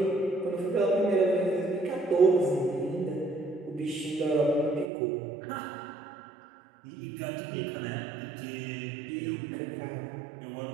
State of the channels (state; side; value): drops out; left; at 4.9 s